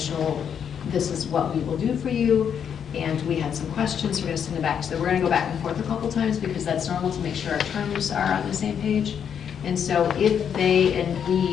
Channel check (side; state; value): right; quieter; 8.0 dB